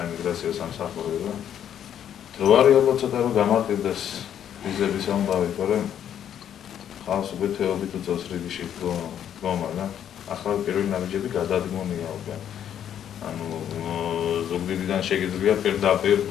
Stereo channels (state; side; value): quieter; right; 9.7 dB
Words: სამსახურებო. დრო არის ალბათ ცოტა რომ გამარტივდეს ვიზების ამბავი, თორემ ხალხს უკვე თეობით უწევს რიგში დგომა და ახლა პირველი ნაბიჯები გადადგმულია უკვე. ანუ ზუგდიდიდან შეგიძლია პირდაპირ